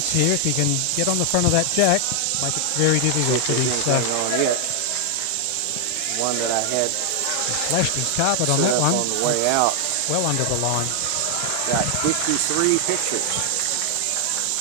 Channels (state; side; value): different; both; correlation 0.00